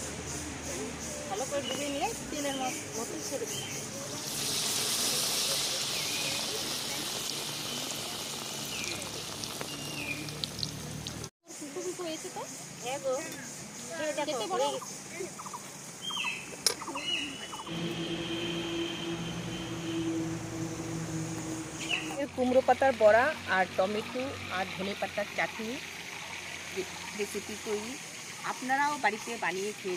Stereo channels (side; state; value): both; identical; correlation 1.00